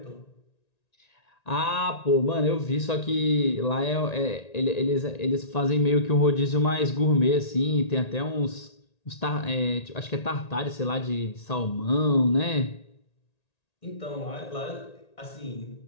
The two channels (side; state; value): right; late; 1.9 ms